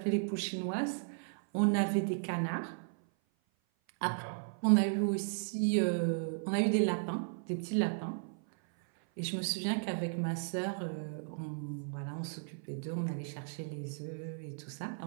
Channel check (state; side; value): silent; left; 54 dB below the other